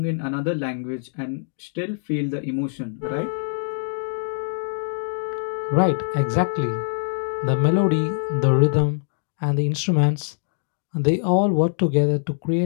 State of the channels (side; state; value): right; silent; digital silence